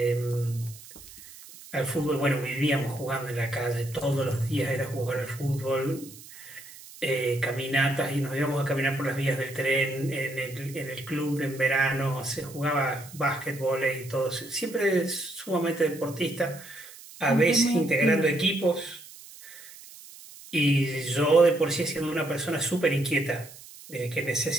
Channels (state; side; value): noise; right; hiss, 18 dB below the sound